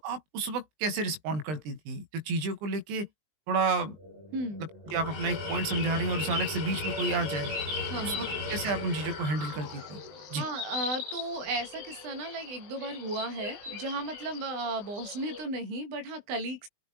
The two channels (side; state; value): left; late; 20 ms